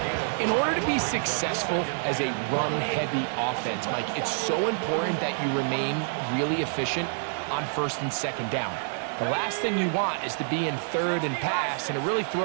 In order to be successful as a run-heavy offense, Mike, it's so important that you remain really efficient on first and second down. The last thing you want is to be in third and pass, and it really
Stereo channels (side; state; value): left; silent; 56 dB below the other